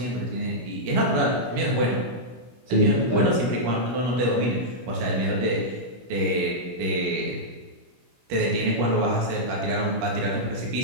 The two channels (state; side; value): late; left; 16 ms